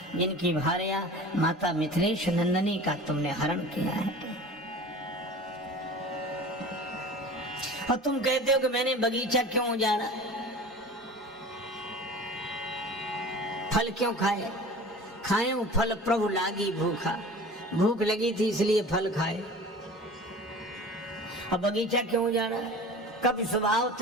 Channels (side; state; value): both; normal; correlation 0.39